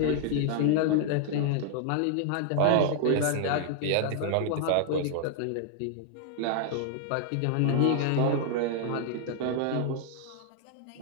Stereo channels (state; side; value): different; both; correlation -0.01